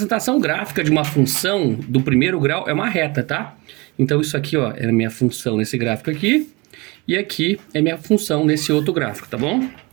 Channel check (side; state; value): left; quieter; 25.0 dB